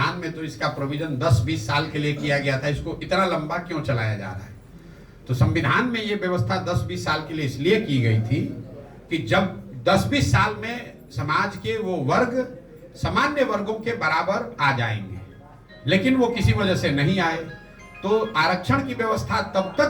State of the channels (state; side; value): identical; both; correlation 1.00